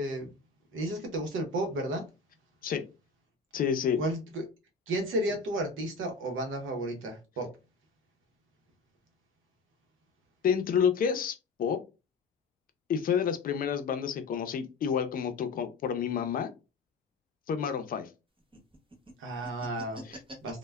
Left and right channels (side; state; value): right; quieter; 4.2 dB